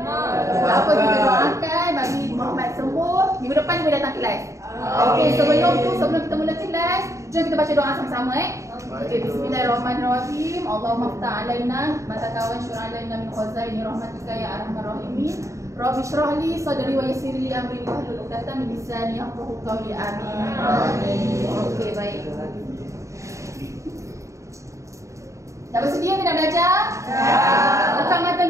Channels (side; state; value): left; late; 0.15 ms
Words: Tak apa, kita doakan bagi Muhammad sembuh. Minggu depan dia boleh datang kelas. Okey, sebelum kita mula kelas, jom kita baca doa sama-sama Okey, bismillahirrahmanirrahim. Allahumma ftah alaina mata kawan syur'a alaina min khazaini rahmatika ya arhamar rahimin. Rabbi shrah li sadri wa yassir li amri wahlul 'uqdatam min lisani yafqahu qawli. Amin. Okey, baik. Dah bersedia ke nak belajar? Buka mata